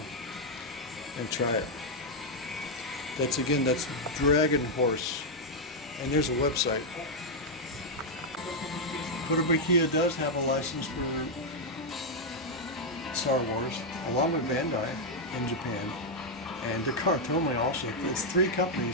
and try it. That's Dragon Horse. And there's a website. Kotobukiya does have a license for Star Wars, along with Bandai in Japan, and Tomy also. It's 3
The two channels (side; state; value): both; normal; correlation -0.01